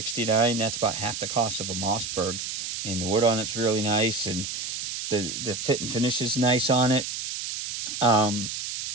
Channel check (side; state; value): right; noise; hiss, 5 dB below the sound